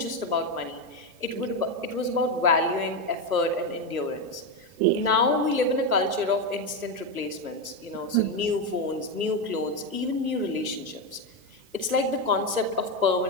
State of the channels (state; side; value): late; left; 1.2 ms